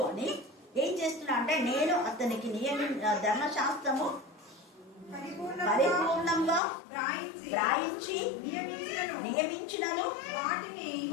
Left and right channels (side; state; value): right; drops out; at 6.6 s